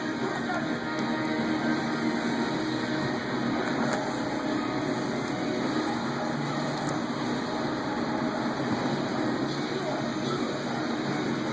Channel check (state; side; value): identical; both; correlation 1.00